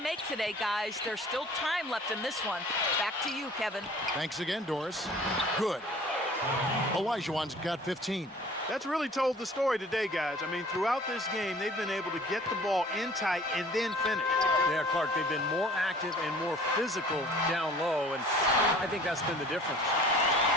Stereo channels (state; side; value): normal; both; correlation 0.49